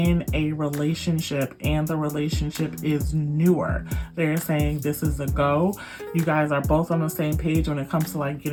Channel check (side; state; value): both; identical; correlation 1.00